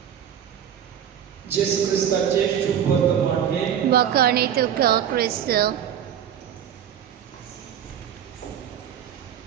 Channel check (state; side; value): quieter; left; 9.5 dB